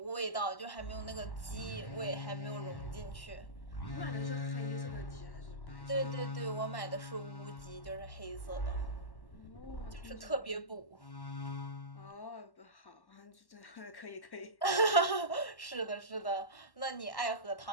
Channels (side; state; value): right; late; 1.1 ms